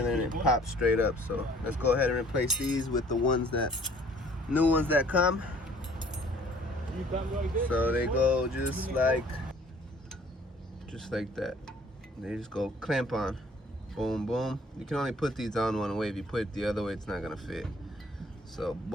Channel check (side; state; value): both; normal; correlation 0.55